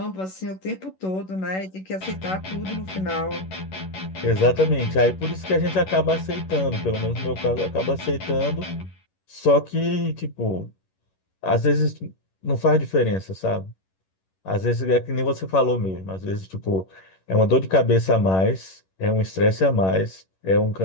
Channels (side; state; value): right; late; 11 ms